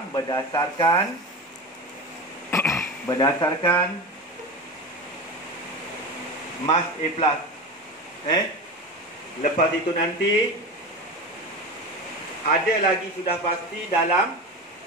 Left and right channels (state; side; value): normal; both; correlation 0.26